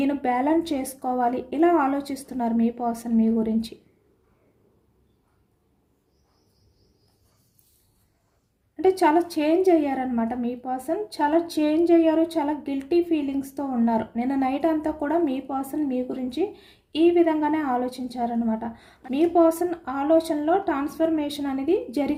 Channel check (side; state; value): both; identical; correlation 1.00